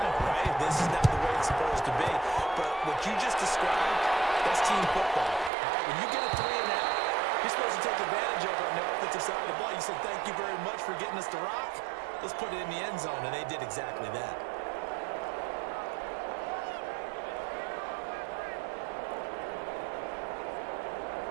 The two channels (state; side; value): drops out; left; at 5.5 s